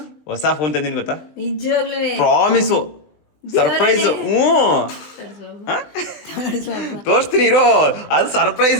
ಹೊಸ ಫೋನ್ ತಂದಿನಿ ಗೊತ್ತಾ? ನಿಜವಾಗ್ಲೂ ಪ್ರಾಮಿಸು ಸರ್ಪ್ರೈಸು. ತೋರಿಸ್ತೀನಿ ಇರೋ, ಅದು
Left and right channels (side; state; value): right; late; 20 ms